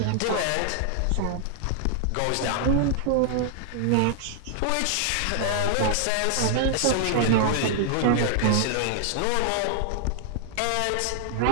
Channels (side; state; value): both; different; correlation 0.00